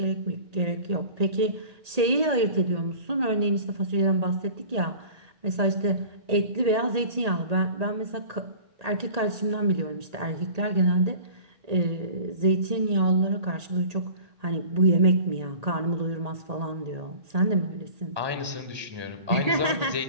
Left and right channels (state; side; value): late; left; 1.8 ms